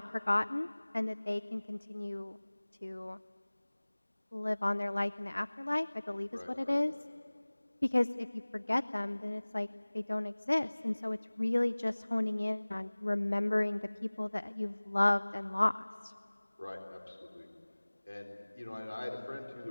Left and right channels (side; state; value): both; inverted; correlation -1.00